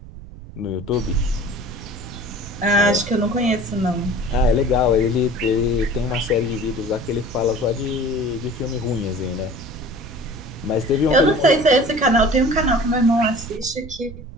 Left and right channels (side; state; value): right; noise; rumble, 15 dB below the sound